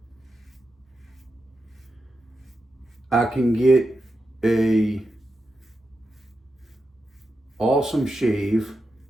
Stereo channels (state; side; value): normal; both; correlation 0.88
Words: I can get a awesome shave